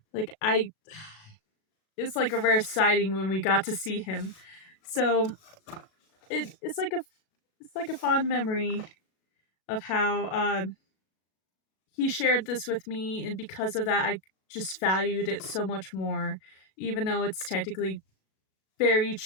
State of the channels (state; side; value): late; right; 37 ms